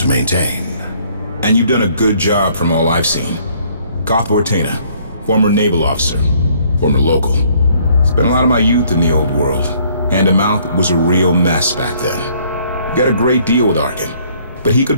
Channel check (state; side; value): inverted; both; correlation -0.62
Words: maintain. And you've done a good job from all I've seen. Goth Ortena, former naval officer, former local. Spent a lot of my youth in the old world. Hand-to-mouth was a real mess back then. Got a great deal with Arkin, but he